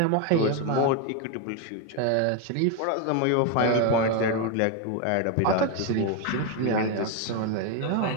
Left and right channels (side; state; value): both; different; correlation 0.02